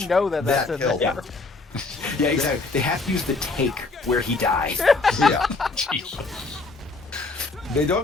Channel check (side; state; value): right; quieter; 3.6 dB